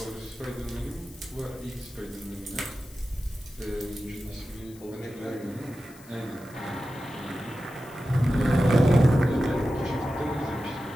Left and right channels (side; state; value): left; noise; hiss, 22 dB below the sound